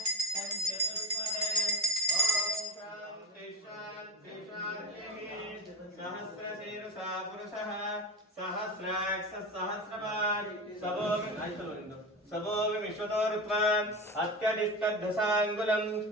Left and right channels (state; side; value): normal; both; correlation 0.25